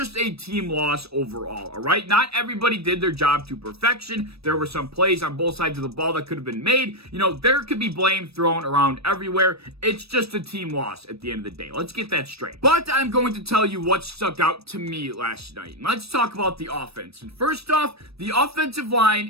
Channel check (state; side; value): late; left; 0.78 ms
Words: a team loss overall, alright? Not everybody did their job to perfection. There were some plays on both sides of the ball that could have been made. You know, there could be blame thrown around everywhere. It's just a team loss at the end of the day. Let's get that straight. But I'm going to tell you what stuck out to me last night. Let's talk about the offense. And first off, the offensive